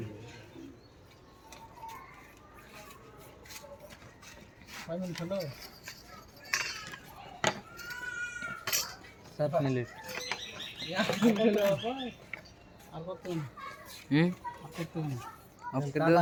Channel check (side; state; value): both; identical; correlation 1.00